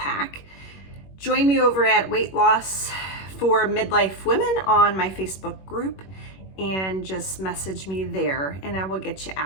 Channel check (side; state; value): right; late; 21 ms